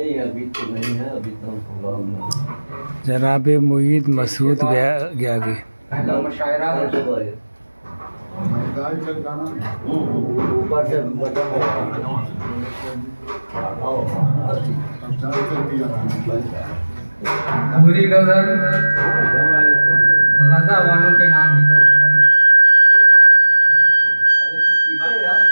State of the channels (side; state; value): both; inverted; correlation -1.00